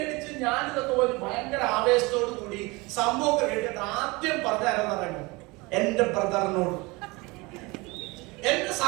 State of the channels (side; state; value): left; quieter; 24.5 dB